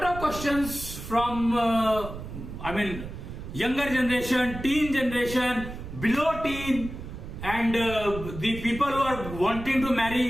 of questions from younger generation, teen generation, below teen, and the people who are wanting to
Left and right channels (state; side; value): noise; right; rumble, 10 dB below the sound